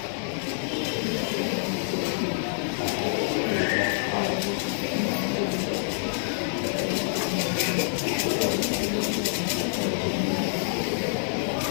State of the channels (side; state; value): right; silent; 60 dB below the other